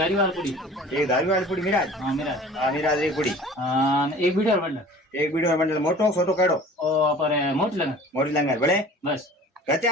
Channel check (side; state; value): both; normal; correlation 0.45